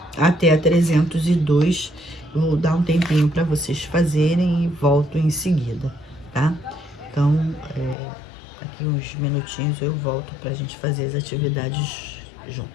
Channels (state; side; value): drops out; right; at 8.0 s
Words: até a 302. Vou dar um tempinho para vocês fazerem e volto em seguida, tá? Então, aqui uns minutinhos eu volto para a gente fazer as atividades